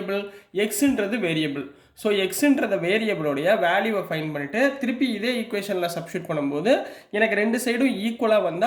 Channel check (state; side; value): identical; both; correlation 1.00